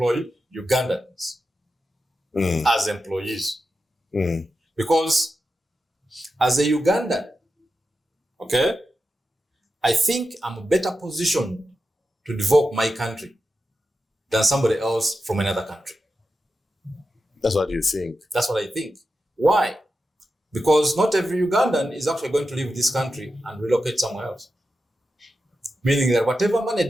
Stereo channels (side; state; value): both; normal; correlation 0.90